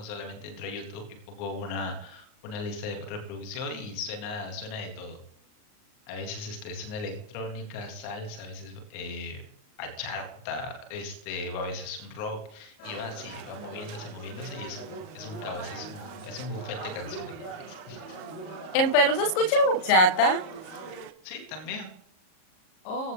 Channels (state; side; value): late; right; 38 ms